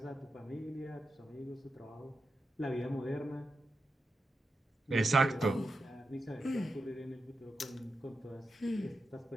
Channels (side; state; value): both; normal; correlation 0.89